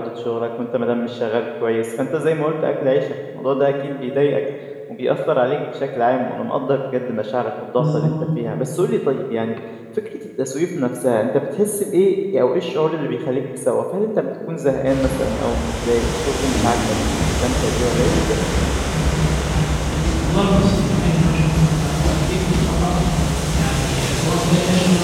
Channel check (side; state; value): both; identical; correlation 1.00